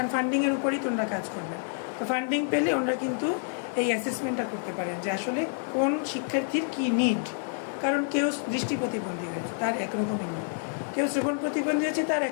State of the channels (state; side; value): silent; right; 59 dB below the other